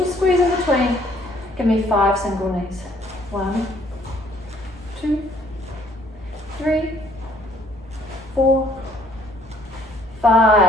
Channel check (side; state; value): both; normal; correlation 0.62